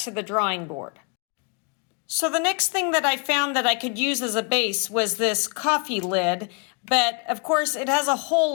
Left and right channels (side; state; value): right; quieter; 36.0 dB